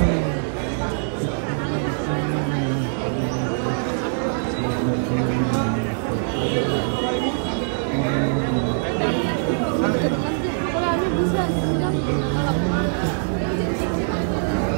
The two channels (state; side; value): silent; left; digital silence